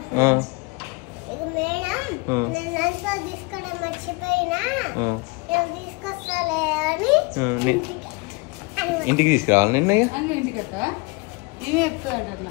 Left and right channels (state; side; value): quieter; right; 27.9 dB